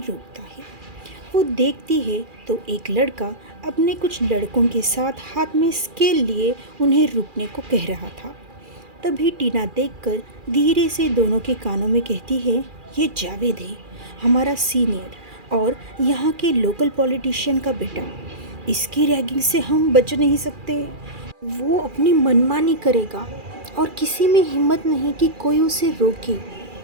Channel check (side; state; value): left; late; 2.4 ms